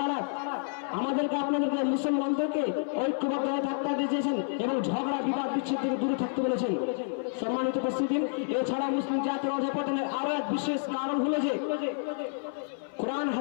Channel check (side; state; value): right; silent; 58 dB below the other